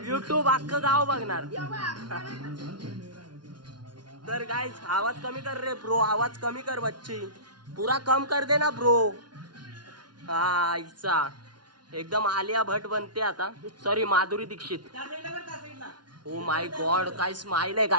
युट्यूब अख्खं गाव बघणार. तर गाईस आवाज कमी कर रे ब्रो. आवाज कमी कर बच्ची. पूरा कम कर दे ना ब्रो. हा इच्छा एकदम आलिया भट बनते आता. Sorry Madhuri Dixit. Oh my god काय स्माइल आहे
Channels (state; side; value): late; left; 0.70 ms